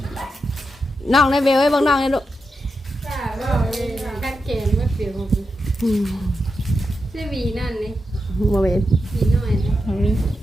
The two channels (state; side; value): normal; both; correlation 0.87